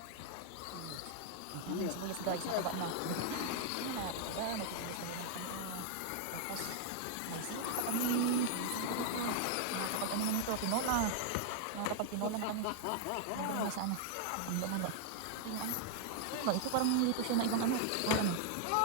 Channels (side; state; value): both; different; correlation 0.00